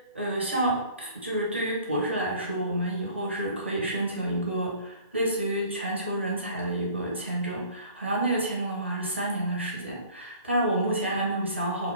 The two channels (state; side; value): inverted; both; correlation -0.50